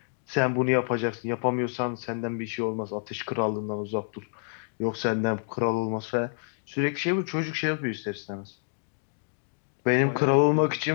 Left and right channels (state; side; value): silent; right; digital silence